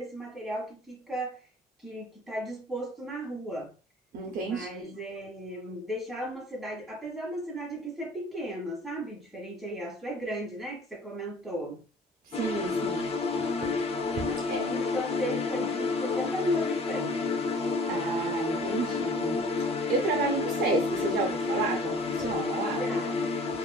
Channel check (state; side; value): normal; both; correlation 0.49